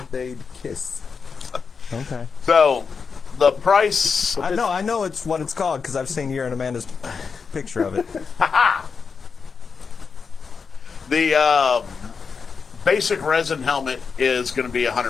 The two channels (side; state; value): right; quieter; 5.5 dB